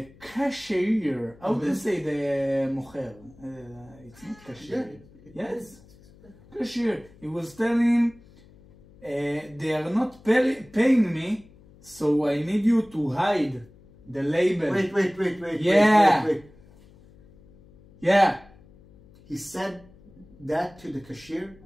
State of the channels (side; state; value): left; noise; hum, 25 dB below the sound